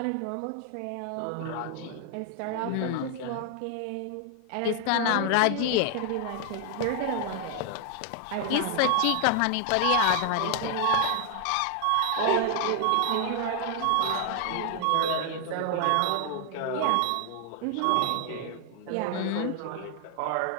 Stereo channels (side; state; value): both; different; correlation 0.00